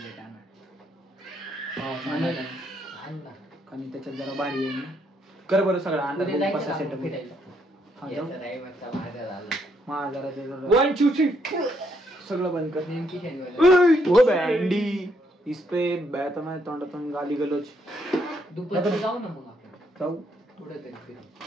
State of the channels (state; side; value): normal; both; correlation 0.74